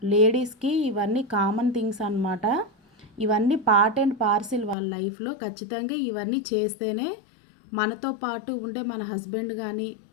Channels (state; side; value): drops out; right; at 4.8 s